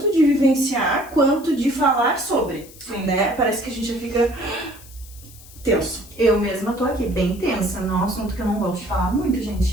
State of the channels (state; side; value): noise; left; hiss, 20 dB below the sound